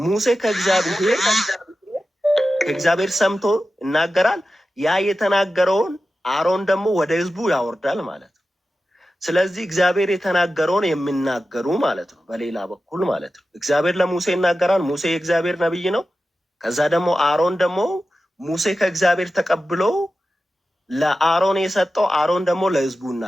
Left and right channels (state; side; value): normal; both; correlation 0.93